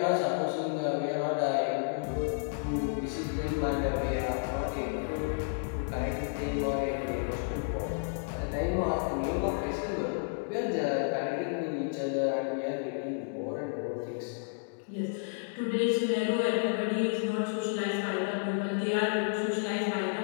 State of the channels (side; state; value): right; silent; digital silence